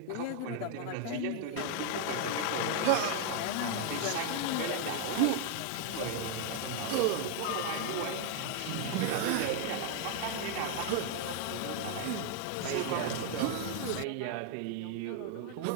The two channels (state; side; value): different; both; correlation 0.00